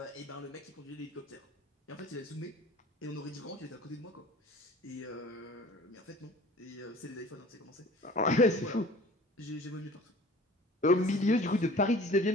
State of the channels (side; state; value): both; normal; correlation 0.45